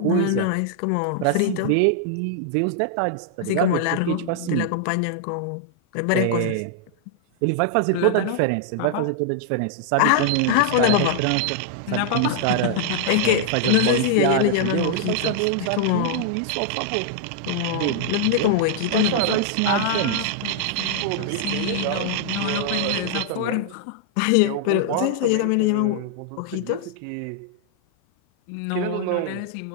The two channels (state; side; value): different; both; correlation -0.01